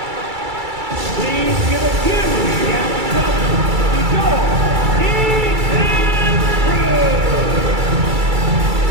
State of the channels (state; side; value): late; left; 2.3 ms